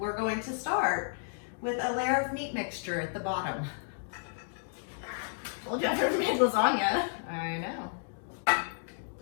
going to start with a layer of meat mixture at the bottom. Told you I've never made lasagna. I know.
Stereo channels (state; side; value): silent; right; digital silence